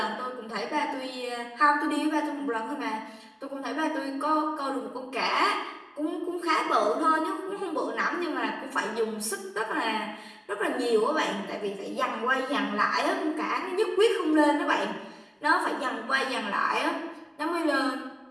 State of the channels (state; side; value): identical; both; correlation 1.00